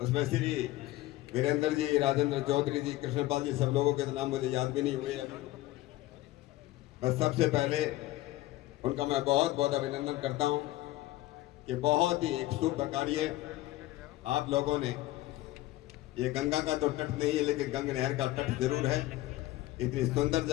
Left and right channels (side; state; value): right; quieter; 16.9 dB